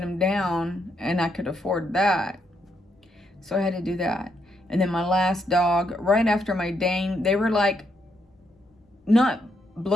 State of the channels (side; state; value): both; normal; correlation 0.77